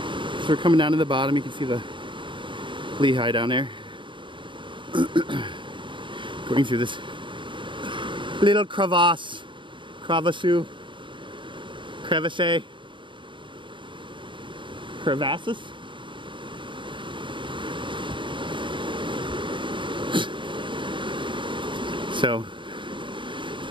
we're coming down to the bottom. You can see the Lehigh down there. Going through this little crevasse. Crevasses. Crevasses? So,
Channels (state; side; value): late; left; 0.24 ms